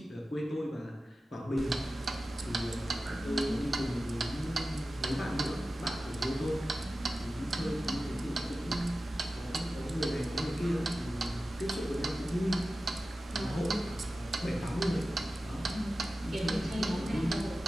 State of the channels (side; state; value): both; normal; correlation 0.94